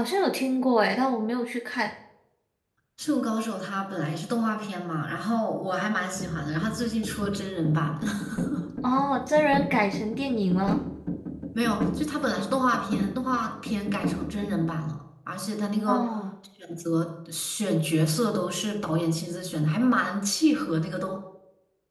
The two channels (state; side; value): identical; both; correlation 1.00